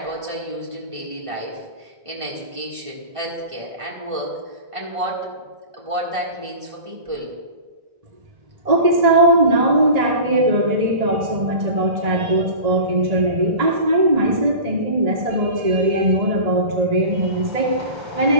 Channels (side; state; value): left; late; 1.5 ms